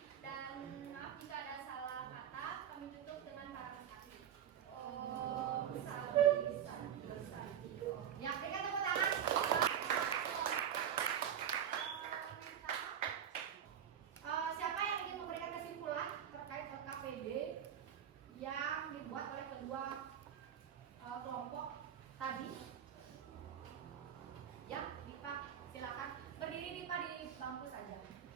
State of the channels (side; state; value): left; quieter; 9.3 dB